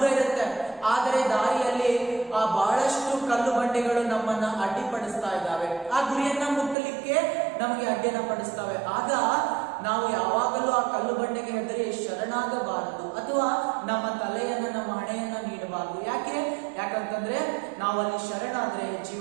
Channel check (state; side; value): drops out; left; at 6.8 s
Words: ಇರುತ್ತೆ, ಆದರೆ ದಾರಿಯಲ್ಲಿ ಆ ಬಹಳಷ್ಟು ಕಲ್ಲು ಬಂಡೆಗಳು ನಮ್ಮನ್ನ ಅಡ್ಡಿಪಡಿಸ್ತಾ ಇದ್ದಾವೆ, ಆ ಗುರಿಯನ್ನ ಮುಟ್ಟಲಿಕ್ಕೆ ನಮಗೆ ಅಡ್ಡಿಯನ್ನ ಪಡಿಸ್ತವೆ। ಆಗ ನಾವು ಯಾವಾಗಲೂ ಆ ಕಲ್ಲು ಬಂಡೆಗೆ ಹೆದರಿ ಶರಣಾಗಬಾರದು, ಅಥವಾ ನಮ್ಮ ತಲೆಯನ್ನ, ನಮ್ಮ ಹಣೆಯನ್ನ ನೀಡಬಾರದು। ಯಾಕಂತಂದ್ರೆ ನಾವು ಅಲ್ಲಿ ಶರಣಾದ್ರೆ